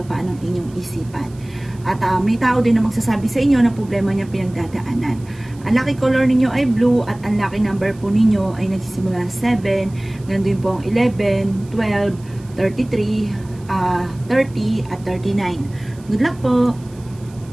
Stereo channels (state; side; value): noise; right; hiss, 26 dB below the sound